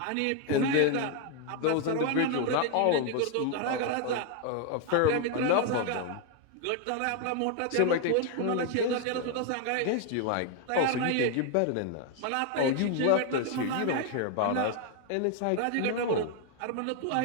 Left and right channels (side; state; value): both; different; correlation 0.01